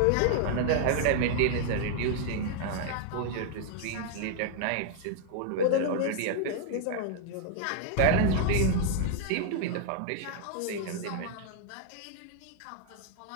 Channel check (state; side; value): different; both; correlation 0.00